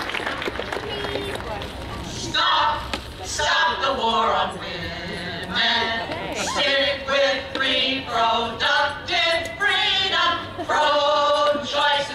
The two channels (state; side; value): identical; both; correlation 1.00